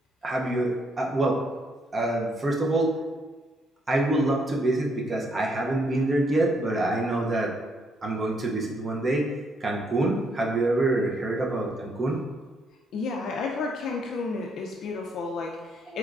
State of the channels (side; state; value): both; normal; correlation 0.72